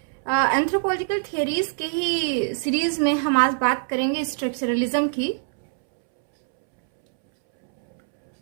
एंथ्रोपोलॉजिकल थियरीज के ही सीरीज में हम आज बात करेंगे स्ट्रक्चरलिज्म की।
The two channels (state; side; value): silent; left; 63 dB below the other